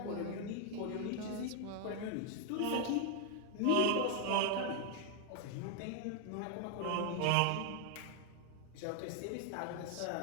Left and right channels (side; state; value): both; different; correlation 0.00